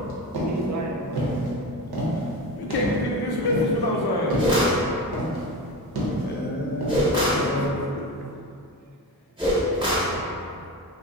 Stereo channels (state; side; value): normal; both; correlation 0.25